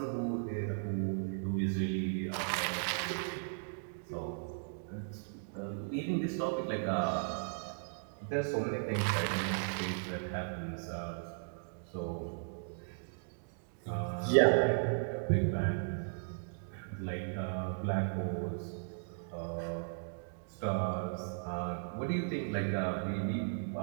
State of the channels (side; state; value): left; silent; digital silence